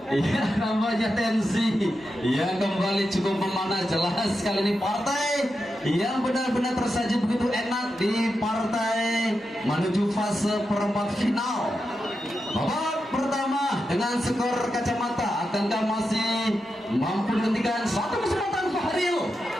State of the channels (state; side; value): normal; both; correlation 0.88